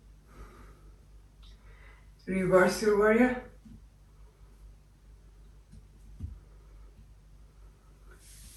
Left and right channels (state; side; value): identical; both; correlation 1.00